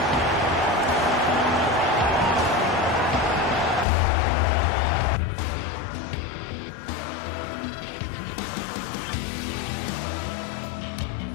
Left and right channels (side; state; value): right; drops out; at 3.9 s